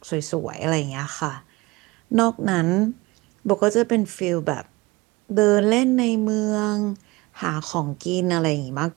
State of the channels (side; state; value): left; quieter; 22.2 dB